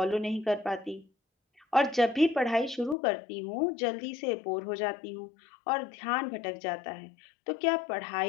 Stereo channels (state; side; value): drops out; right; at 3.0 s